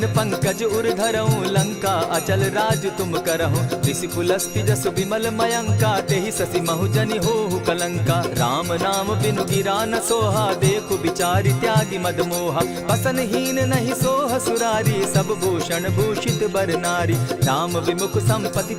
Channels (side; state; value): both; identical; correlation 1.00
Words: पंकज उर धरऊं, लंका अचल राज तुम करहु। ऋषि पुलस्ति जसु विमल मयंका, तेहि ससि महु जनि होहु कलंका। राम नाम बिनु गिरा न सोहा, देखु बिचारी त्यागी मद मोहा। बसनहीन नहीं सोह सुरारी, सब भूषण भूषित बर नारी। राम विमुख संपति